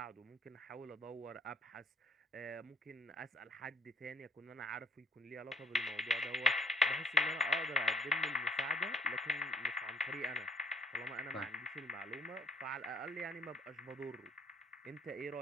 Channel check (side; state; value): both; normal; correlation 0.61